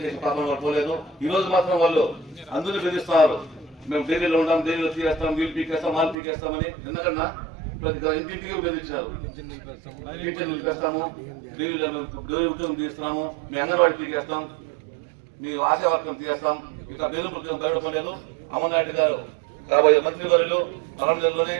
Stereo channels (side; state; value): left; drops out; at 6.2 s